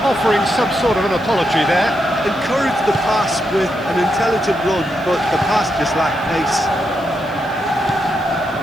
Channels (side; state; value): right; noise; hiss, 27 dB below the sound